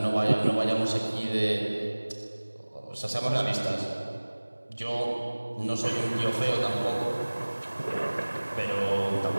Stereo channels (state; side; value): inverted; both; correlation -1.00